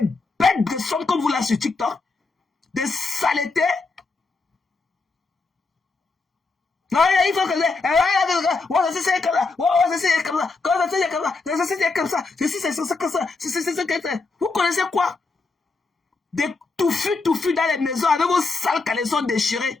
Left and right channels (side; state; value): right; quieter; 3.9 dB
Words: de son comme vous là sur TikTok, des saletés. Non, il faut que c'est comme ça, c'est comme ça. Vous connaissez quoi? Des touffus dans les maisons avec vos sales caleçons